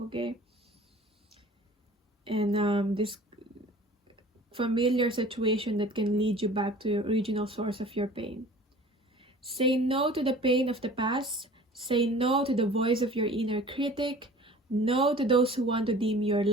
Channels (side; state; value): both; normal; correlation 0.45